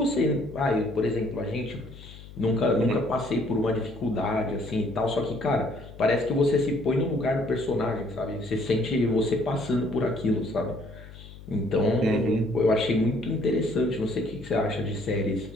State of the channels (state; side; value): noise; left; hum, 17 dB below the sound